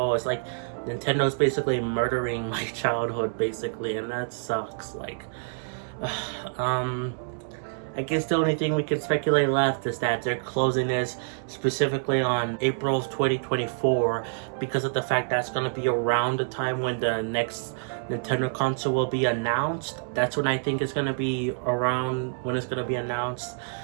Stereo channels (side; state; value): left; silent; digital silence